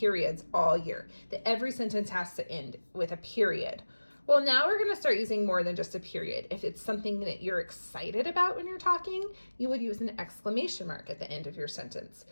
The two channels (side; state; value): both; inverted; correlation -1.00